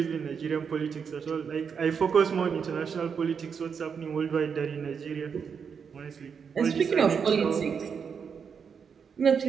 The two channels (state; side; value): quieter; left; 6.5 dB